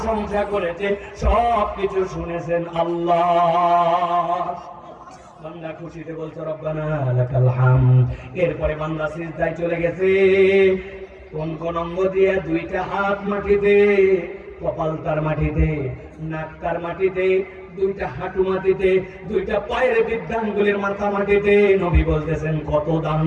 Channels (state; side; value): identical; both; correlation 1.00